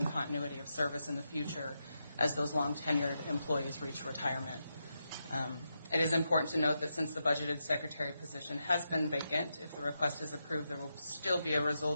continuity of service in the future as those long-tenured employees reach retirement. It is important to note that since the budgeted secretary position has been vacant, if the request is approved, there will still be a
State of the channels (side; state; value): both; inverted; correlation -0.86